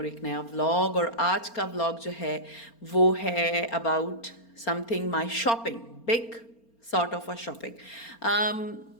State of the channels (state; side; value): late; right; 4.3 ms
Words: एक नया व्लॉग, और आज का व्लॉग जो है वो है about something my shopping, big sort of a shopping.